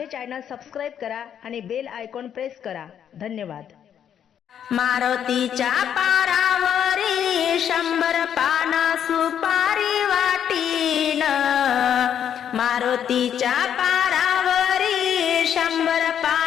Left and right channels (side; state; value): right; quieter; 9.1 dB